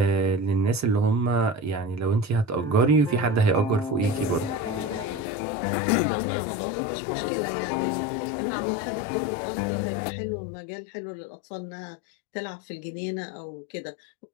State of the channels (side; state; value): right; drops out; at 5.2 s